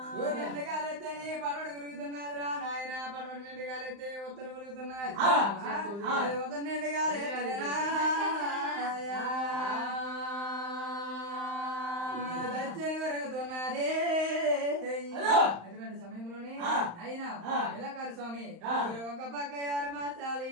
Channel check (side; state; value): left; late; 35 ms